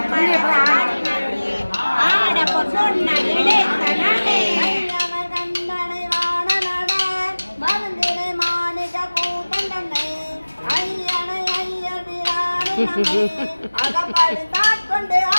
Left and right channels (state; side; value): inverted; both; correlation -1.00